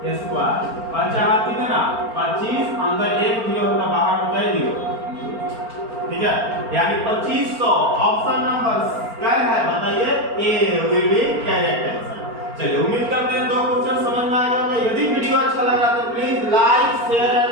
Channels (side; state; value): left; late; 4.4 ms